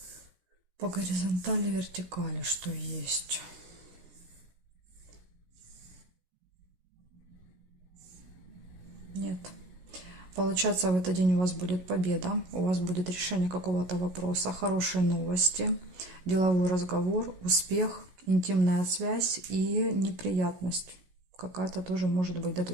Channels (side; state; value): left; late; 16 ms